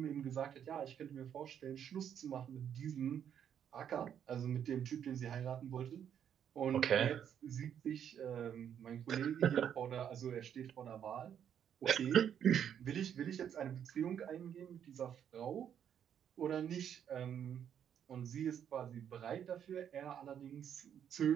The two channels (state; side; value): quieter; left; 8.9 dB